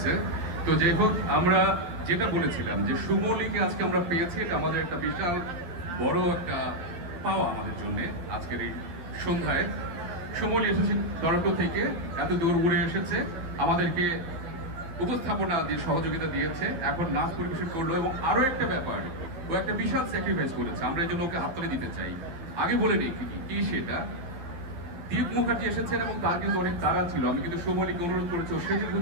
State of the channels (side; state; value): left; late; 12 ms